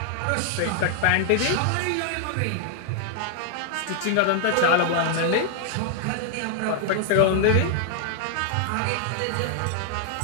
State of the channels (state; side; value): different; both; correlation 0.00